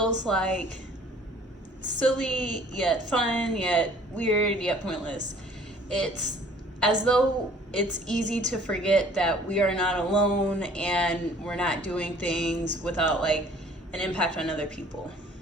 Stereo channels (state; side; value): normal; both; correlation 0.54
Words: like silly, yet fun, yet weird, yet pointless. It's as though it's easy to forget that we are not alone and we're not doing things without like an impact on other people.